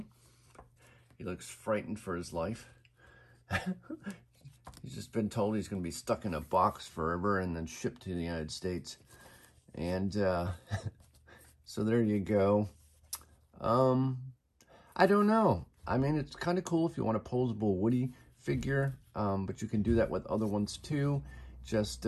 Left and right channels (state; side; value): identical; both; correlation 1.00